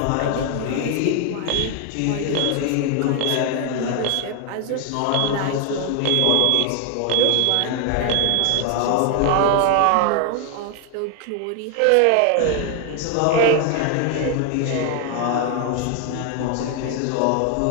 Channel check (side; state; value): both; different; correlation 0.00